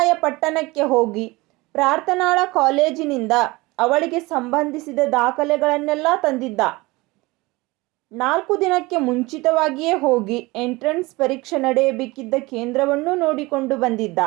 ಹೋಗಿ ಪ್ರಾರ್ಥನಾಳ ಕಾಲೇಜಿನಿಂದ ಅವಳಿಗೆ ಸಂಬಂಧಿಸಿದ ದಾಖಲೆಗಳನ್ನೆಲ್ಲ ತಂದಿದ್ದ. 4 ದಿನಕ್ಕೆ ಮುಂಚಿತವಾಗಿಯೇ ಹೋಗಿ ಎಂಟ್ರೆನ್ಸ್ ಪರೀಕ್ಷೆ ನಡೆಯಬೇಕಿದ್ದ ಕೇಂದ್ರವನ್ನೂ ನೋಡಿಕೊಂಡು ಬಂದಿದ್ದ.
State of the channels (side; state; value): left; quieter; 22.3 dB